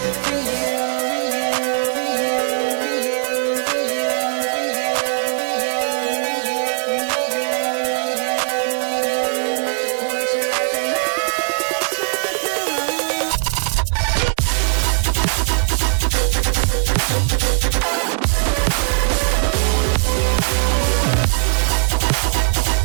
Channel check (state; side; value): silent; left; 66 dB below the other